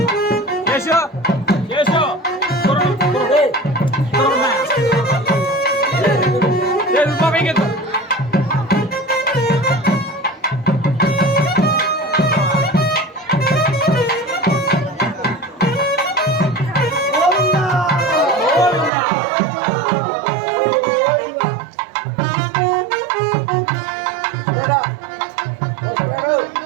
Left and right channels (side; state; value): left; drops out; at 18.9 s